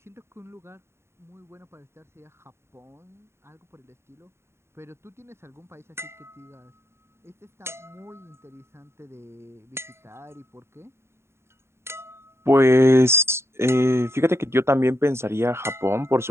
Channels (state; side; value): late; left; 0.12 ms